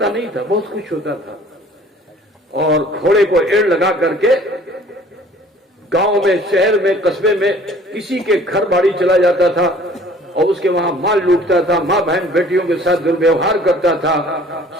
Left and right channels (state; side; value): normal; both; correlation 0.52